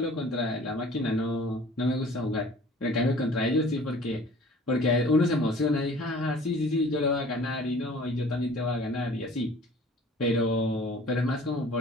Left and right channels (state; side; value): normal; both; correlation 0.48